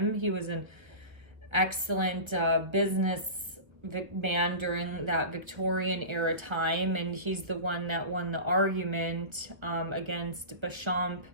He was an excellent business man during that Victorian era time, and he's the one that won the argument against Béchamp,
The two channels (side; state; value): left; late; 1.5 ms